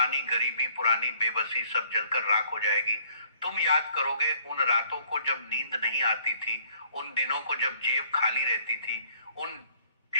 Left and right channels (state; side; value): inverted; both; correlation -0.60